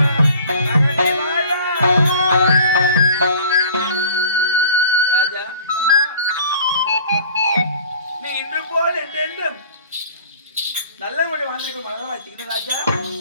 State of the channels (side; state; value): both; inverted; correlation -0.48